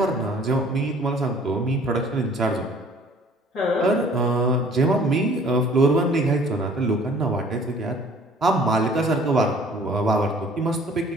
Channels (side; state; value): both; normal; correlation 0.54